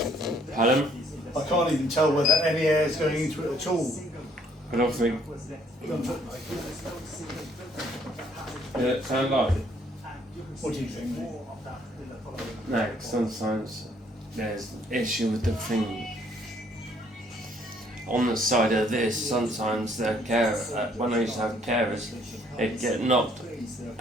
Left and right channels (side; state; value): both; normal; correlation 0.64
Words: Pardon? I can't even tell whether any air is going into it at all. I don't think. Did it sound like? What do you think? No, sometimes there's an issue with the thing. On the side of this, sometimes the when I used to have carers, it'd get knocked,